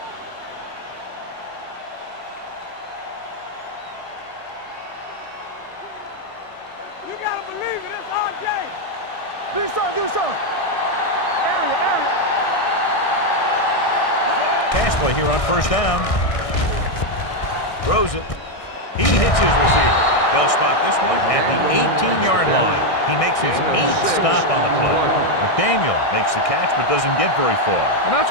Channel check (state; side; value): late; right; 1.6 ms